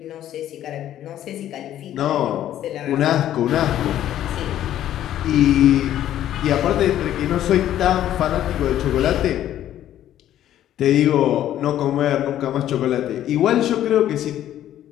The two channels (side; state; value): right; quieter; 11.9 dB